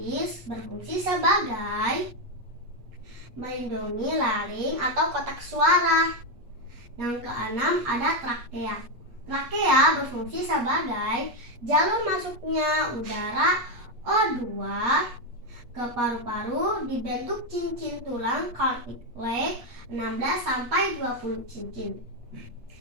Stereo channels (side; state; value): left; late; 8.3 ms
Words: berfungsi sebagai melindungi laring atau kotak suara. Yang keenam ada trakea. Trakea berfungsi sebagai jalur masuknya udara O2 ke paru-paru dibentuk cincin tulang cartilage 16-20 cincin.